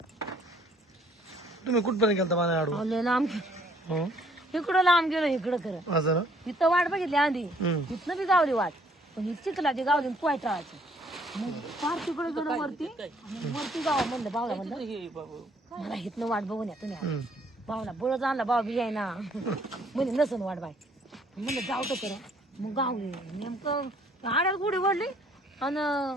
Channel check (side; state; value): both; normal; correlation 0.63